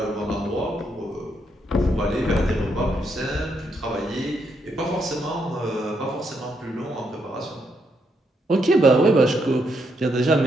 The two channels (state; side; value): normal; both; correlation 0.77